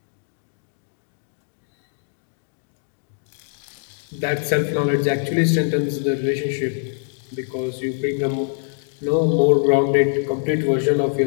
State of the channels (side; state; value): right; silent; 63 dB below the other